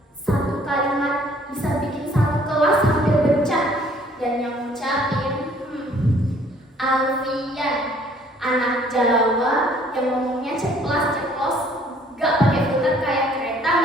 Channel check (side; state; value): both; normal; correlation 0.59